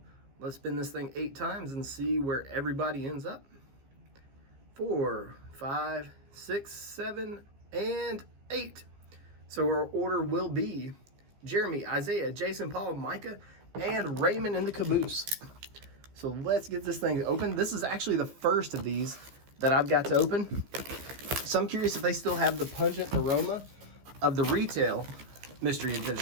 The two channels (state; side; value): late; left; 15 ms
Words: Let's spin this thing 8 times and see where everybody ends up. 4, 5, 6, 7, and 8. So our order will be Jeremy, Isaiah, Jason, Paul, Micah, and Raymond in the caboose. So let's get this thing open. This is actually the first of these that I've got to open. So I'm curious if they still have the pungent aroma of the retail mystery edition.